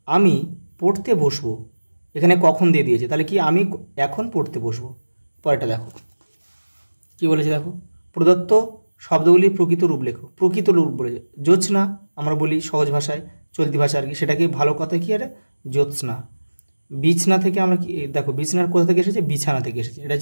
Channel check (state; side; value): inverted; both; correlation -1.00